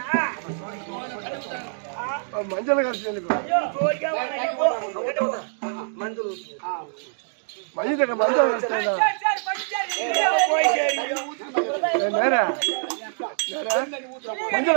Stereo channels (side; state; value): left; silent; digital silence